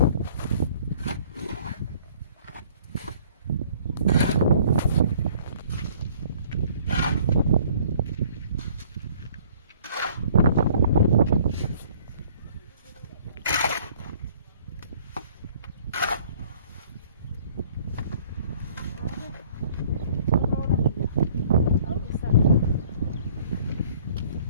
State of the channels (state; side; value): inverted; both; correlation -0.56